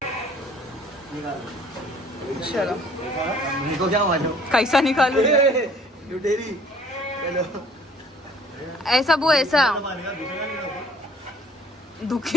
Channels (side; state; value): both; normal; correlation 0.56